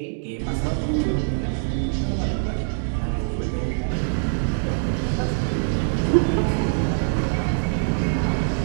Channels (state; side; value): silent; left; digital silence